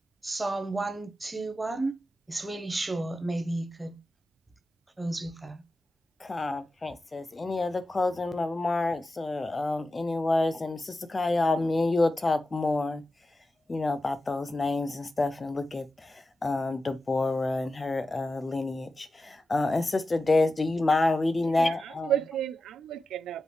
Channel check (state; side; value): normal; both; correlation 0.92